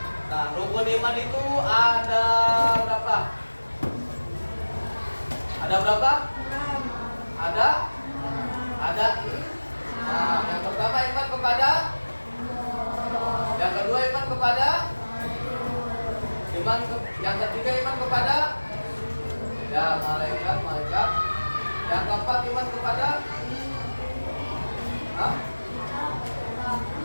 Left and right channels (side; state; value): both; inverted; correlation -1.00